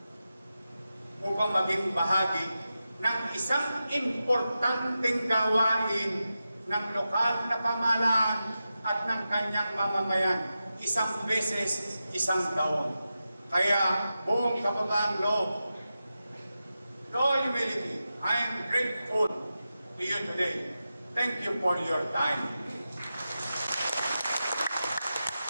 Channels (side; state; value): both; inverted; correlation -0.91